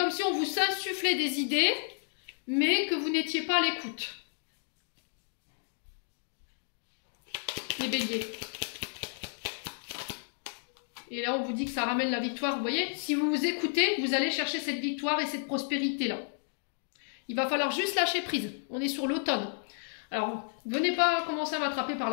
si on vous insufflait des idées, mais que vous n'étiez pas à l'écoute. Les béliers. Et là, on vous dit que ça ramène la victoire. Vous voyez, si vous vous écoutez, vous allez chercher cette victoire et cette prospérité-là. Il va falloir juste lâcher prise. On est sur l'automne. Alors, venez pas commencer à m'attraper par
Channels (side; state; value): right; silent; 57 dB below the other